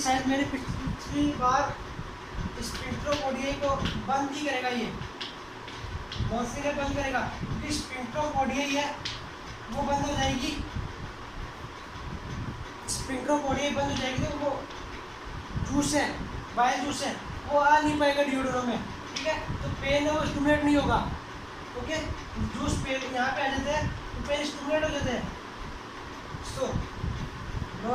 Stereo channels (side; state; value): both; identical; correlation 1.00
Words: शायद मैंने पिछली बार स्पेक्ट्रोपोडिया को बंद ही करेगा, ये मॉर्फिन है बंद करेगा, क्योंकि स्पेक्ट्रोपोडिया ही है वो बंद हो जाएगी, स्पेक्ट्रोपोडिया बंद हो जाएगी तो वो जूस है बाइल जूस है वो आ नहीं पाएगा डिओड्रो में। ठीक है, तो पेन है वो स्टिमुलेट नहीं होगा। ओके, जूस पेन यहाँ पे आ जाते हैं तो पेन स्टिमुलेट हो जाते हैं। सो